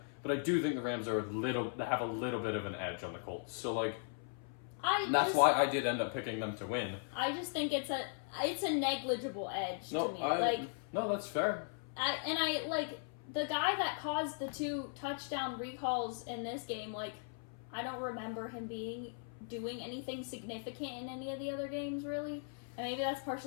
But I do think the Rams are they have a little bit of an edge on the Colts. So, like, that's why I did end up picking them to win. I just think it's a negligible edge to me. No, that's fair. I like the guy that caused the 2 touchdown recalls in this game. Like, I don't remember him doing anything significant in any of the other games, really. And maybe that's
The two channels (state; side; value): silent; right; 52 dB below the other